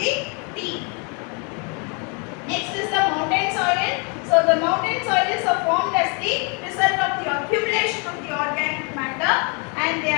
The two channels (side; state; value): right; quieter; 34.2 dB